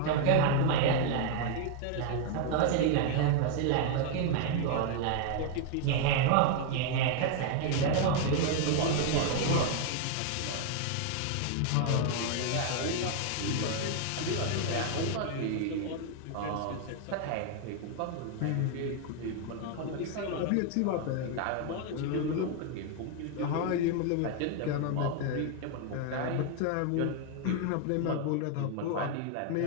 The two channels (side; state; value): both; different; correlation 0.00